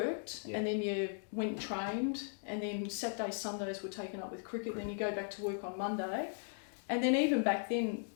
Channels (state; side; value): silent; right; digital silence